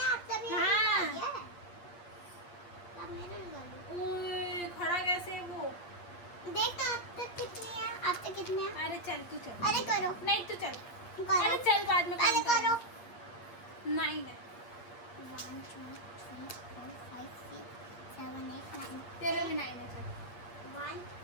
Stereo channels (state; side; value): late; right; 8.5 ms